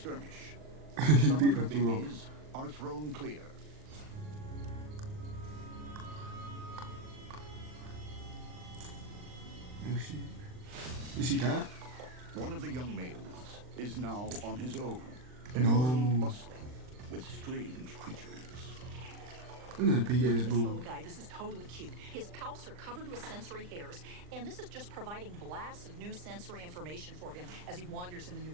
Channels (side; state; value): left; late; 39 ms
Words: He some beat of her him through. babies are thrown clear. Oh shit. Did she die? One of the young males is now on his own, in No. a world bustling with strange creatures. Look at the big ass This little bull. guy, this is totally cute. His palps are covered with sensory hairs, and this is just providing blasts of new sensory information for him as he wanders in the new